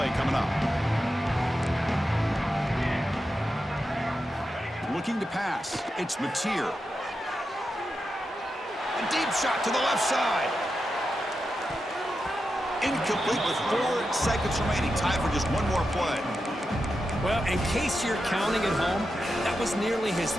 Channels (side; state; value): both; normal; correlation 0.89